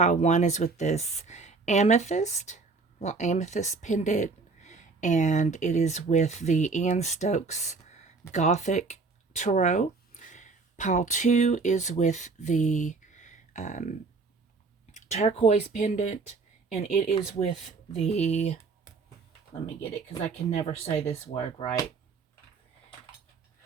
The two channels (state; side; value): quieter; left; 4.2 dB